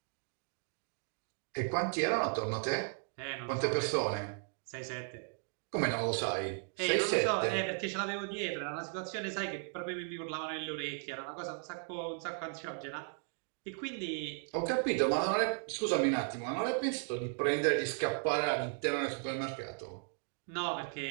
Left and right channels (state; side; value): silent; left; 54 dB below the other